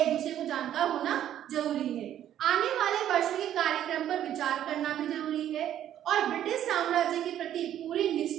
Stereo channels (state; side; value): quieter; left; 11.1 dB